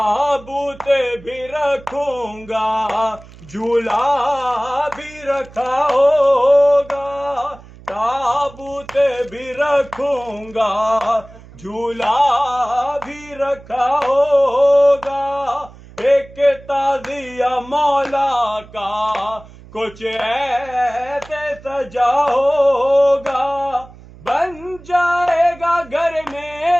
بھی رکھوں گا جھولا بھی رکھا ہوگا تابوت بھی رکھوں گا جھولا بھی رکھا ہوگا ایک تعزیہ مولا کا کچھ ایسے سجا ہوگا بن جائے گا گھر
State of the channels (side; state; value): right; noise; hum, 21 dB below the sound